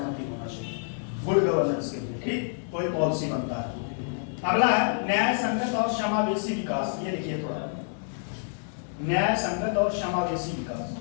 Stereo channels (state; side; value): silent; right; digital silence